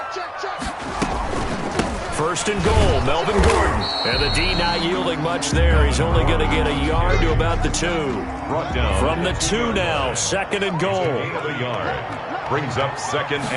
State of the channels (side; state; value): both; identical; correlation 1.00